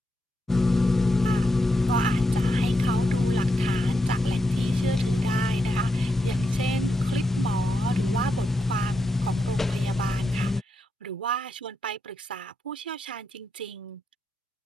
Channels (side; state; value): both; normal; correlation 0.84